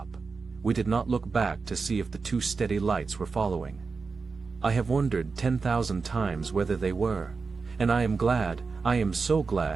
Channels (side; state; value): left; quieter; 4.6 dB